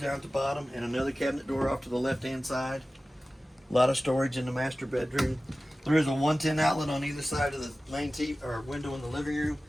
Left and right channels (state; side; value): normal; both; correlation 0.96